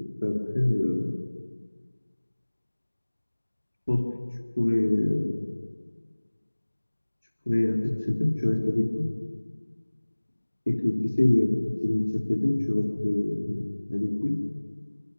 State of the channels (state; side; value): inverted; both; correlation -1.00